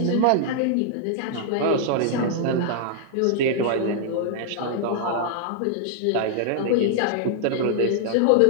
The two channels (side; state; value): both; different; correlation -0.01